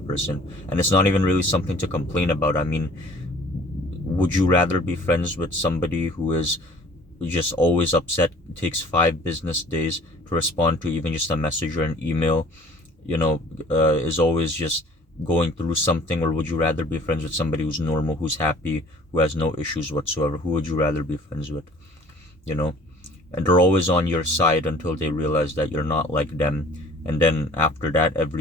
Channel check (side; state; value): both; normal; correlation 0.50